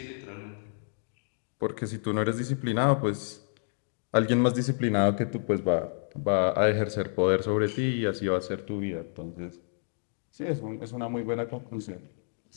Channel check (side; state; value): right; silent; digital silence